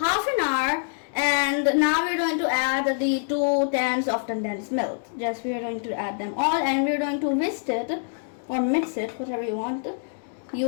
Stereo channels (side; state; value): right; silent; digital silence